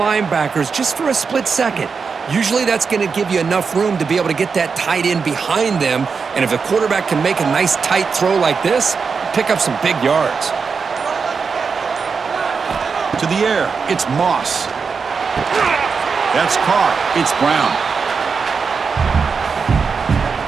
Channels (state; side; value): quieter; left; 5.4 dB